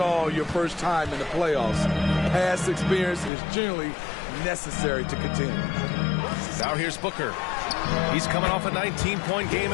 all your first time in the playoffs. Past experience is generally necessary to continue. Now here's Booker. He's coming off a 19-point game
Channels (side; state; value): right; drops out; at 3.3 s